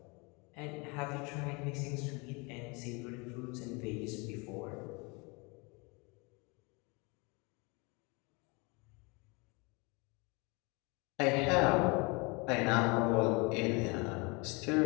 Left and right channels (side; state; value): right; quieter; 29.1 dB